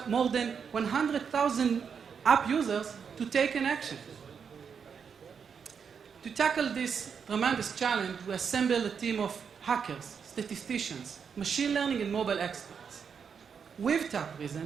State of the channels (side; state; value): left; quieter; 6.6 dB